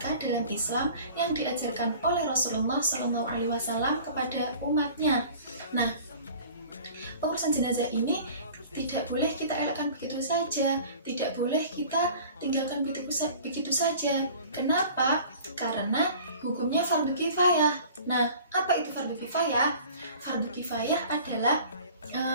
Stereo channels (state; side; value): inverted; both; correlation -0.46